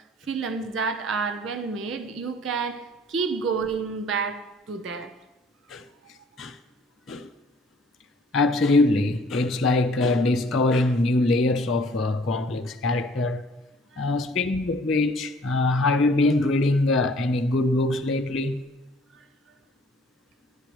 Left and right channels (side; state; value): both; normal; correlation 0.56